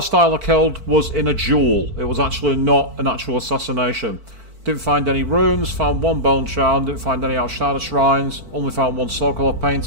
I killed was in a duel. It was actually not an actual assassination. Didn't find any runes, found 1 bone charm, didn't find any outside of shrines, only found 1 Sokolov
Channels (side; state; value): left; late; 4.5 ms